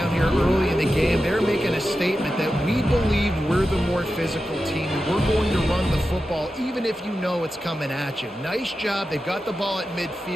here early in the game, they're making a statement that we believe we're the more physical team and we're going to run the football even if you know it's coming at you. Nice job. They've got the ball at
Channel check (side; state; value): both; normal; correlation 0.91